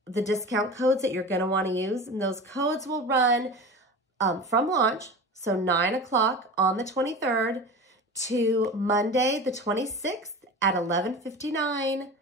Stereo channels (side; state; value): both; normal; correlation 0.32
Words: the discount codes that you're going to want to use. And those codes will run from launch, so 9 o'clock on the 23rd to Monday the 26th at 11:59